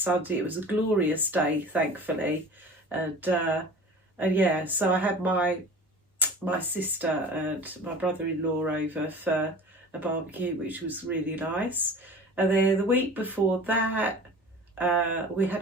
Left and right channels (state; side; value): normal; both; correlation 0.39